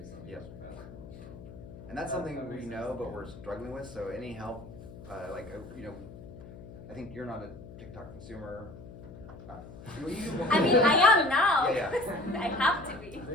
on each platform. So. And that's something we know, but we're struggling with. So any help, I think you're not a TikTok consumer. I mean, I am now. Yeah. I have to be.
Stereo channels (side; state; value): left; noise; hum, 15 dB below the sound